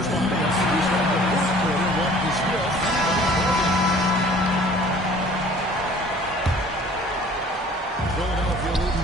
behind us, we start the fourth quarter. What is still Philadelphia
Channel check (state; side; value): normal; both; correlation 0.51